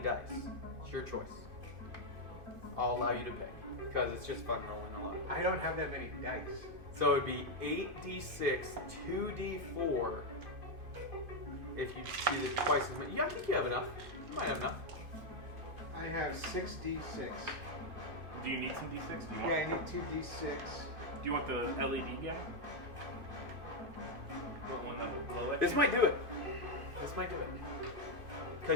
It's your choice. I'll allow you to pick because it's just fun rolling a lot. I don't have that many dice. So it'd be 8d6, 2d4. If you do the twice as many. Yeah, I think you have enough. You might have enough. I have 6d6. Do you need some d6? Do you Yeah, want, I need 2d6. do you want the LED guy? The one that will blow it? This might do it. This might do it.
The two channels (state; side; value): late; left; 2.5 ms